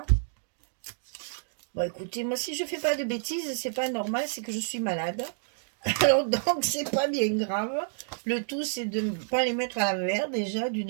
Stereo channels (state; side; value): silent; left; digital silence